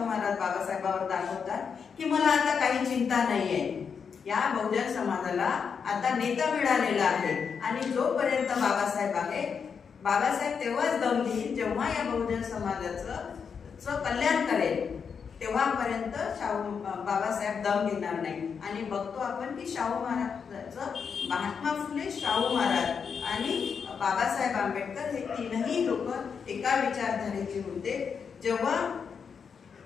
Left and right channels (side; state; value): right; quieter; 6.4 dB